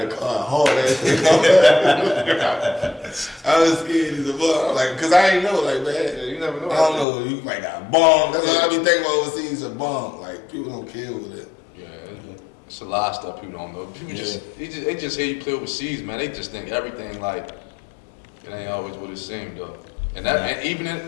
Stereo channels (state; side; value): drops out; right; at 7.1 s